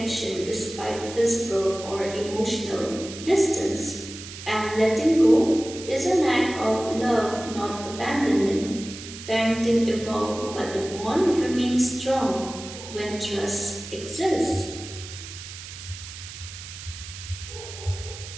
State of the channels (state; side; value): noise; right; hiss, 13 dB below the sound